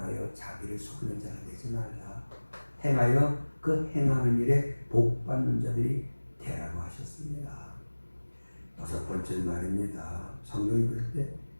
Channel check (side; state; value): both; inverted; correlation -1.00